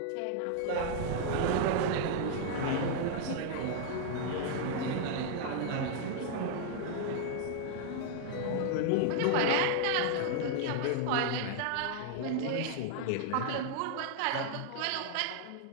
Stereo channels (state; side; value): different; both; correlation 0.00